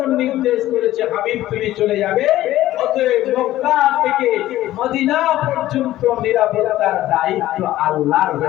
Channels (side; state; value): right; quieter; 14.7 dB